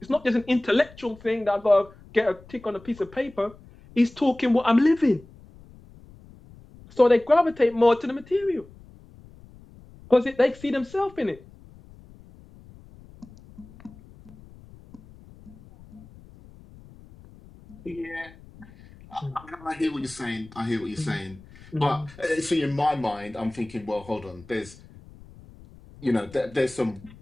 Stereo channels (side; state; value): left; noise; rumble, 22 dB below the sound